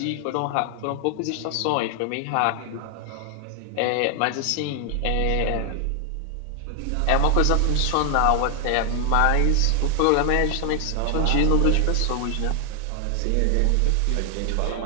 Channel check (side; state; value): both; different; correlation 0.00